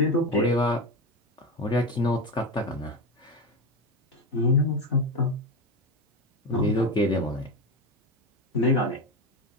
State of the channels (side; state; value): both; normal; correlation 0.18